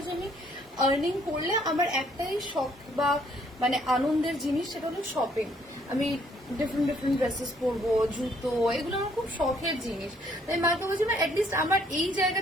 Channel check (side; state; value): both; normal; correlation 0.65